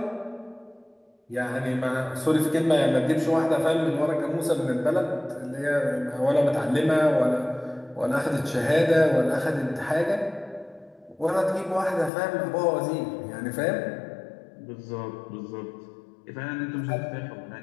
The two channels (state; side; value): drops out; right; at 12.1 s